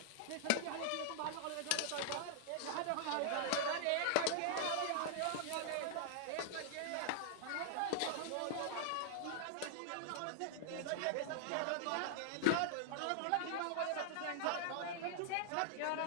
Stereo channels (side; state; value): both; different; correlation -0.01